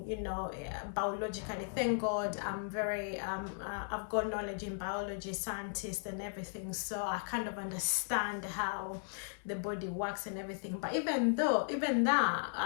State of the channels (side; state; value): right; silent; digital silence